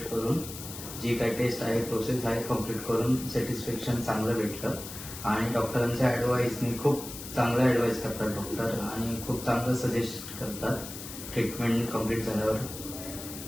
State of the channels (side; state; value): left; noise; hiss, 11 dB below the sound